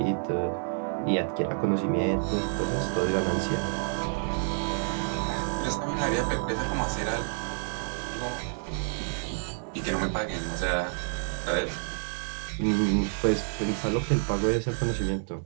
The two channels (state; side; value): silent; left; 59 dB below the other